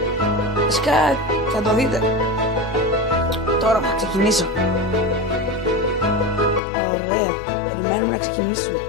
Βασικά θα το δείτε. Τώρα θα ξεκινήσω. Ωραία, περιμένουμε να ξεκινήσουμε.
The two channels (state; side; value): drops out; right; at 6.6 s